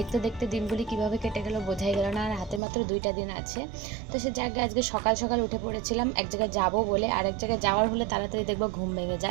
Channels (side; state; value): left; drops out; at 2.6 s